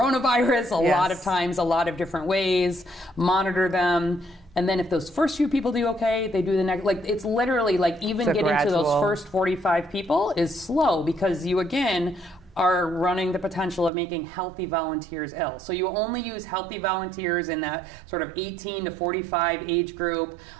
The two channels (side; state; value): left; drops out; at 13.9 s